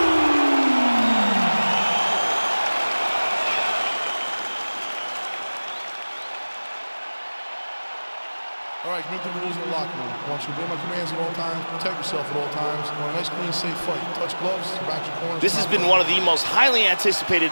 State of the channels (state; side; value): inverted; both; correlation -1.00